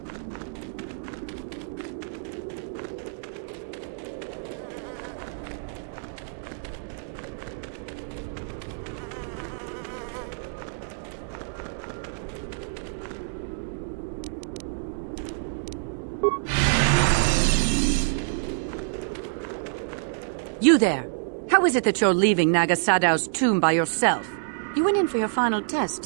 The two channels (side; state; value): left; silent; digital silence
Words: You there! How is it that you're leaving Naga Sadow's tomb by yourself? You went in for your final test,